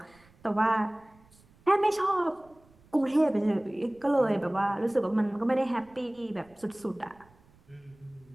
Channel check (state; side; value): noise; right; rumble, 29 dB below the sound